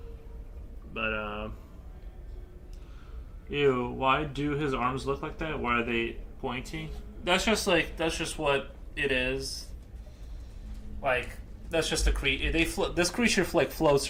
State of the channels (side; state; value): both; identical; correlation 1.00